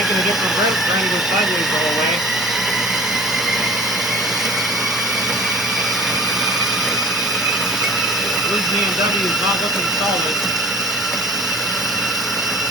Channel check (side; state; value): both; normal; correlation 0.45